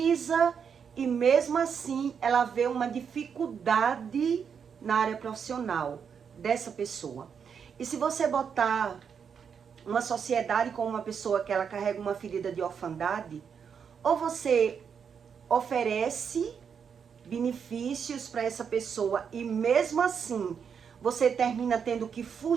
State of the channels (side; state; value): left; quieter; 6.9 dB